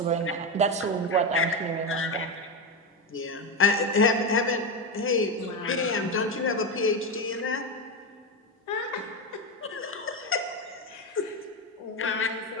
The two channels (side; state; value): both; normal; correlation 0.13